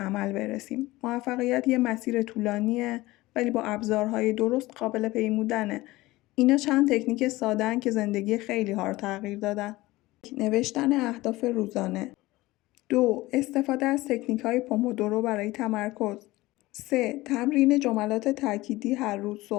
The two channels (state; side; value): quieter; right; 19.1 dB